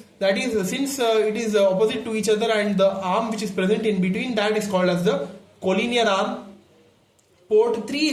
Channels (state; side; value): identical; both; correlation 1.00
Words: that is, since it is opposite to each other, and the arm which is present in between that is called as the collinear arm. Port 3